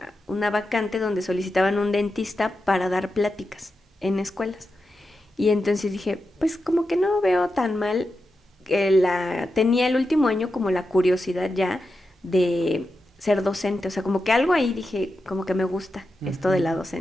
vacante donde solicitaban un dentista para dar pláticas en escuelas. Y entonces dije, pues como que no veo tan mal. Tenía el último año como la curiosidad ya de ser docente, o sea, como que algo ahí dije, como que me gusta esto de Ujú. la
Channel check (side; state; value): both; normal; correlation 0.89